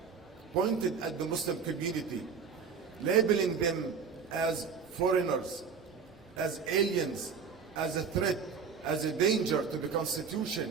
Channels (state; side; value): quieter; left; 6.0 dB